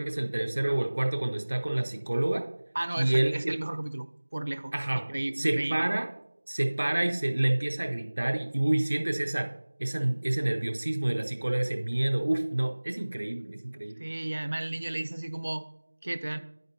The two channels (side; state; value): both; inverted; correlation -1.00